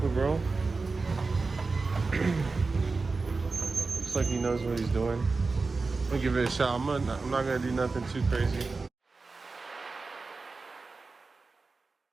with bro. Looks like he knows what he's doing. I'm gonna give it a shot. I'm not gonna do nothing too crazy.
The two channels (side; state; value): left; quieter; 4.0 dB